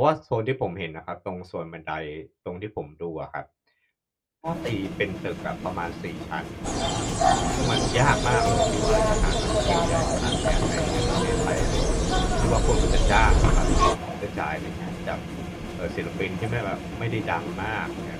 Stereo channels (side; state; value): both; identical; correlation 1.00